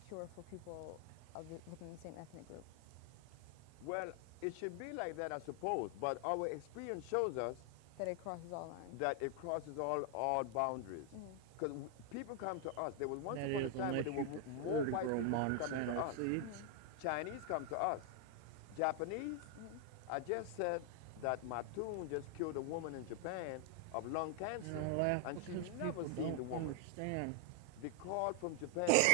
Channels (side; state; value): both; different; correlation 0.00